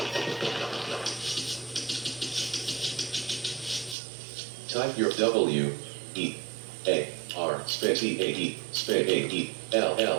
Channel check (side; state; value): left; drops out; at 4.0 s